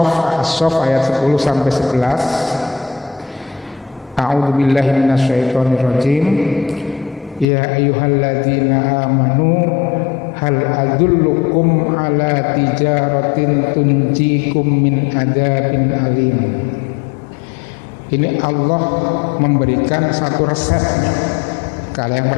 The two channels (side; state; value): right; drops out; at 7.5 s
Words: ayat 10 sampai 11. A'udzubillahi minasyaitonirrajim. Ya ayyuhalladzina amanu hal adullukum ala tijaratin tunjikum min adzabin alim. Ini Allah memberikan satu resepnya. Kalau yang